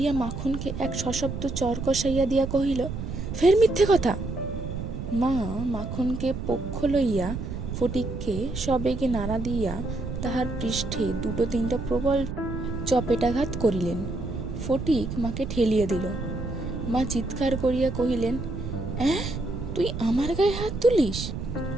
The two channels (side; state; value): right; noise; rumble, 6 dB below the sound